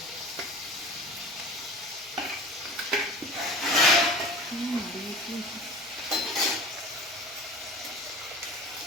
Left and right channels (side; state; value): both; normal; correlation 0.39